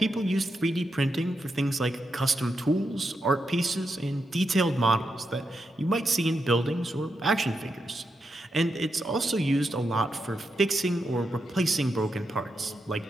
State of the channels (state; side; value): normal; both; correlation 0.85